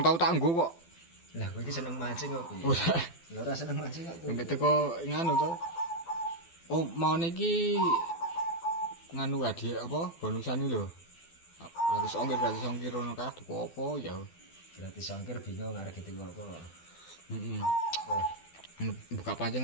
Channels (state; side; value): late; right; 12 ms